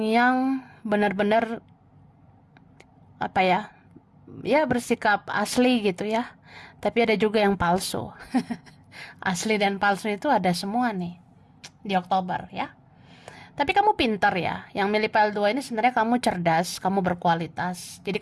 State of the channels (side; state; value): both; identical; correlation 1.00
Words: yang benar-benar apa ya, ya bersikap asli gitu ya. Tapi ada juga yang palsu. Asli dan palsu itu ada semua nih di Oktober ya. Tapi kamu pintar ya. Yang milih PL2 ini sebenarnya kamu cerdas, kamu berkualitas. Jadi